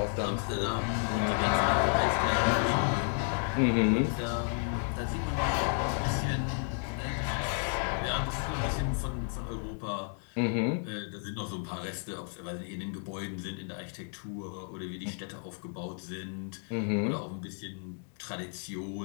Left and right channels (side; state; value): right; silent; 56 dB below the other